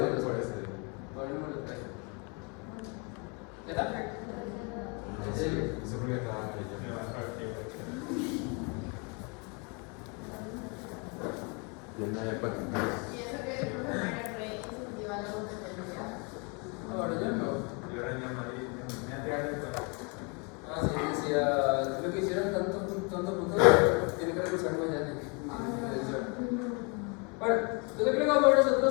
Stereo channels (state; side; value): quieter; right; 33.0 dB